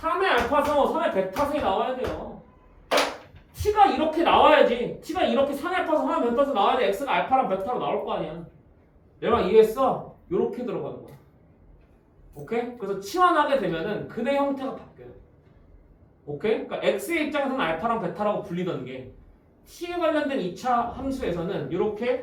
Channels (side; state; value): both; identical; correlation 1.00